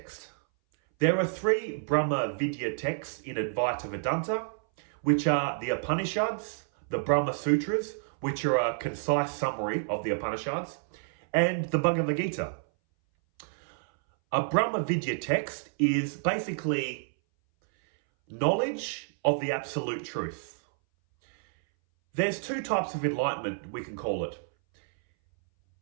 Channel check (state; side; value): silent; left; 58 dB below the other